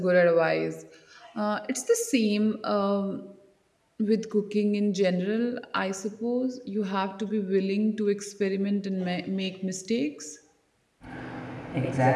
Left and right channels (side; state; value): both; identical; correlation 1.00